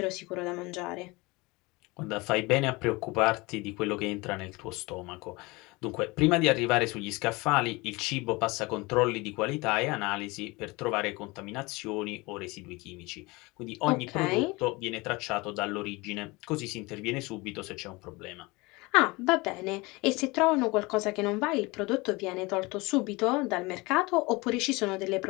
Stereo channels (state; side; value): quieter; right; 24.1 dB